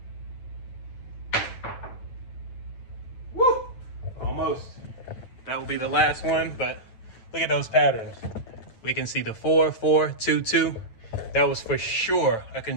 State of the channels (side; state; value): right; late; 9.0 ms